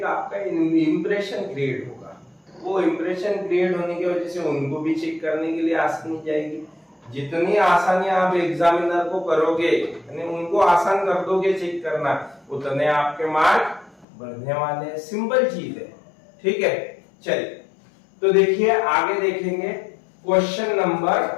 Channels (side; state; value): right; drops out; at 14.1 s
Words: आपका इंप्रेशन क्रिएट होगा। वो इंप्रेशन क्रिएट होने की वजह से उनको भी चेक करने के लिए आसानी जाएगी। जितनी आसानी आप एग्जामिनर को करोगे, यानी उनको आसान कर दोगे चेक करना, उतने आपके मार्क बढ़ने वाले हैं। सिंपल चीज है। ठीक है, चलिए तो देखिए आगे देखेंगे क्वेश्चन नंबर